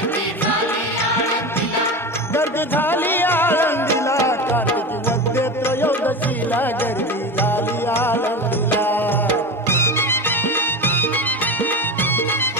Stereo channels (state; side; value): normal; both; correlation 0.25